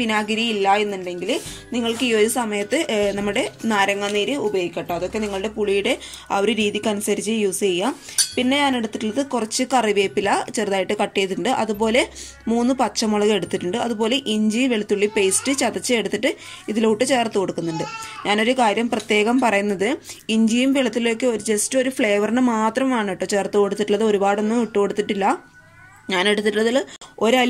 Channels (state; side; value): identical; both; correlation 1.00